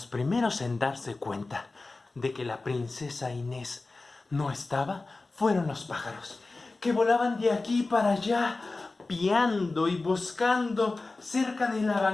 primeros en darse cuenta de que la princesa Inés no estaba fueron los pájaros, que volaban de aquí para allá, piando y buscando cerca de la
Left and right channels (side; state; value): right; quieter; 3.4 dB